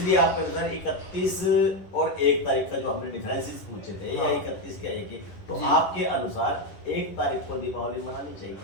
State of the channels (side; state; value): right; late; 11 ms